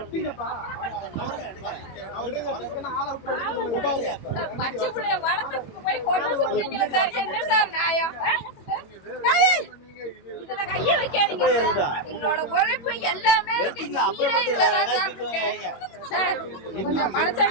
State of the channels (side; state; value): right; late; 22 ms